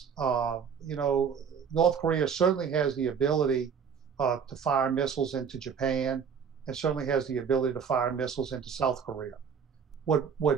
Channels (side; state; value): left; quieter; 6.8 dB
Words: North Korea certainly has the ability to fire missiles into Japan, and certainly has the ability to fire missiles into South Korea.